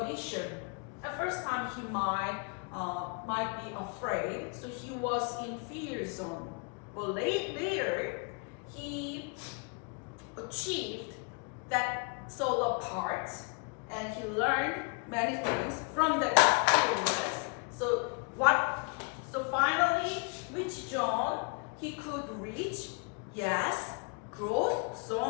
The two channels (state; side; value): quieter; right; 35.7 dB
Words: At first time, he might be afraid, so he was in fear zone. But later, he achieved that solo part, and he learned many things from that experience. So finally, which zone he could reach? Yes, growth